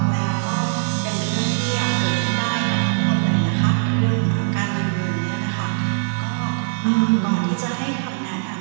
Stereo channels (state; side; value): silent; left; 65 dB below the other